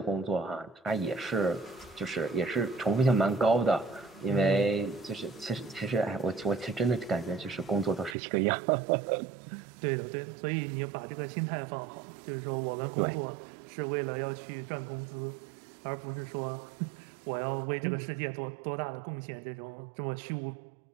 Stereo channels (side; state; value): left; drops out; at 8.2 s